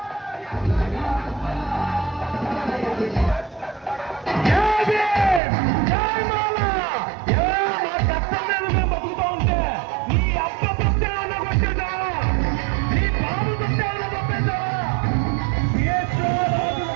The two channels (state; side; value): drops out; left; at 5.4 s